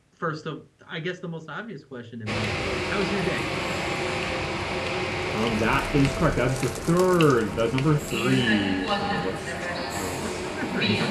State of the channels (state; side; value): identical; both; correlation 1.00